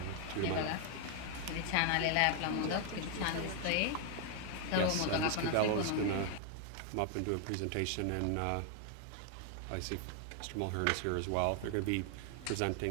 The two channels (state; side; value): different; both; correlation 0.00